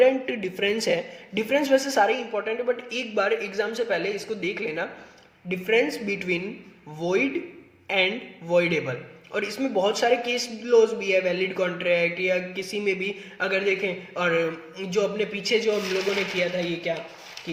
डिफरेंस है, डिफरेंस वैसे सारे इंपॉर्टेंट है बट एक बार एग्जाम से पहले इसको देख लेना, difference between void and voidable. और इसमें बहुत सारे केस लॉज भी है, वैलिड कॉन्ट्रैक्ट या किसी में भी अगर देखें, और जो अपने पीछे जो हम लोगों ने किया था ये क्या कि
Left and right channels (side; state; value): both; identical; correlation 1.00